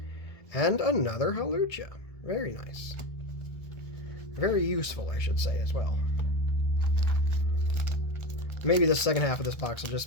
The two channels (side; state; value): right; late; 1.7 ms